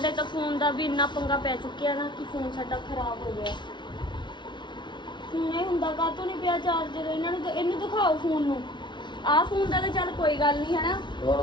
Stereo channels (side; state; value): right; late; 0.23 ms